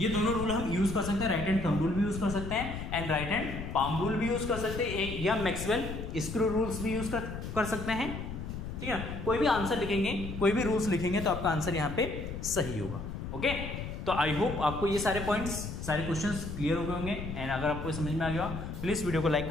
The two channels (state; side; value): noise; left; rumble, 7 dB below the sound